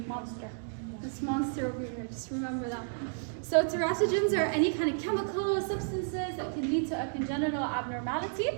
monster. This monster over here. Just remember that. So teratogens are any kind of chemical substances that can lead to a congenital abnormality.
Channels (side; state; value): left; silent; digital silence